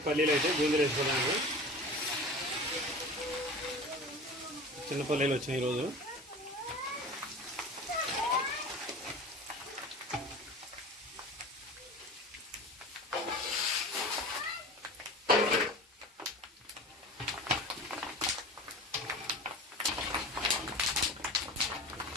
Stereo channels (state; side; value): normal; both; correlation 0.36